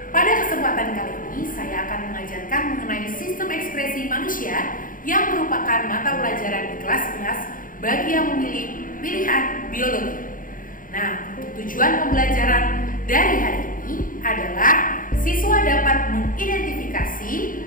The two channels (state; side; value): late; right; 0.40 ms